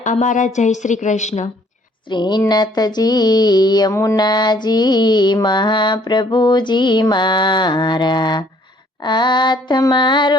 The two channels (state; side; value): normal; both; correlation 0.61